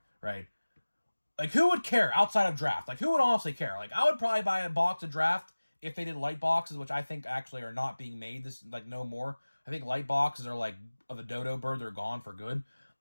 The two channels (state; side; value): inverted; both; correlation -1.00